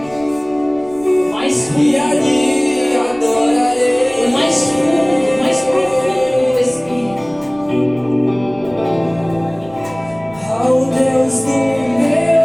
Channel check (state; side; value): noise; right; rumble, 24 dB below the sound